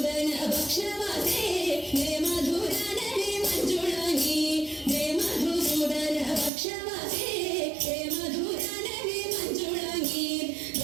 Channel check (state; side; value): drops out; left; at 6.5 s